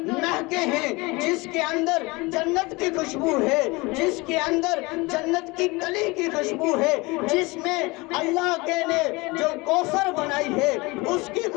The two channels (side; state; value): right; quieter; 24.3 dB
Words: ہیں، جس کے اندر جنت کی خوشبو ہے، جس کے اندر جنت کی کلی کی خوشبو ہے، جس میں اللہ کے نے جو کوثر بنائی ہے اس کی